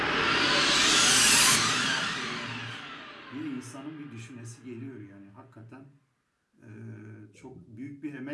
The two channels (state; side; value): identical; both; correlation 1.00